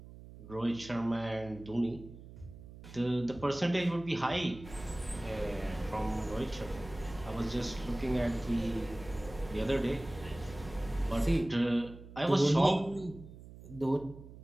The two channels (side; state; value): right; noise; hum, 16 dB below the sound